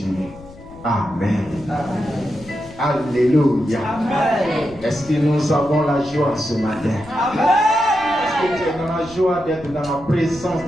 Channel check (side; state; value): left; noise; rumble, 20 dB below the sound